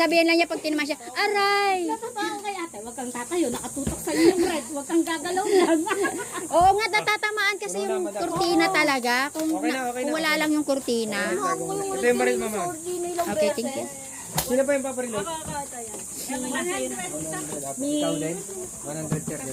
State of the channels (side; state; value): both; identical; correlation 1.00